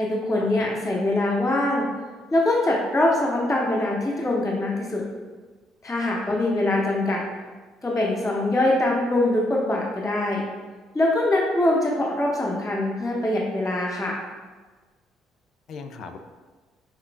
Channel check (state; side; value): normal; both; correlation 0.77